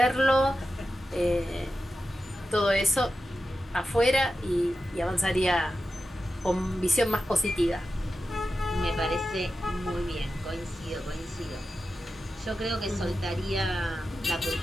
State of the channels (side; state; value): both; normal; correlation 0.92